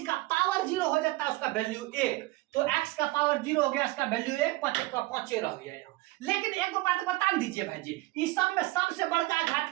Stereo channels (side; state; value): left; quieter; 20.5 dB